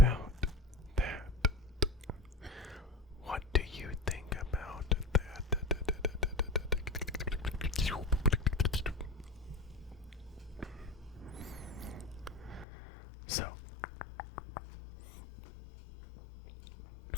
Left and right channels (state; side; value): drops out; right; at 12.7 s